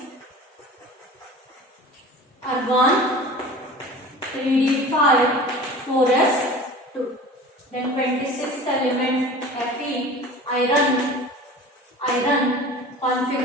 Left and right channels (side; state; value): both; normal; correlation 0.39